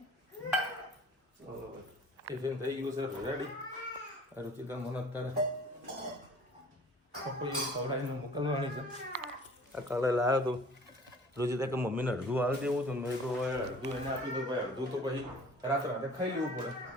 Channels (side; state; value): both; normal; correlation 0.49